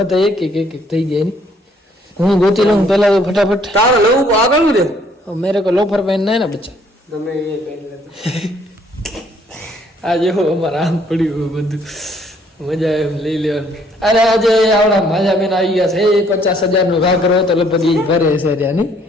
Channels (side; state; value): both; normal; correlation 0.64